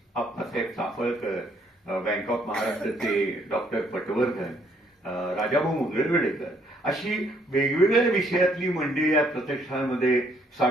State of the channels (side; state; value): both; normal; correlation 0.67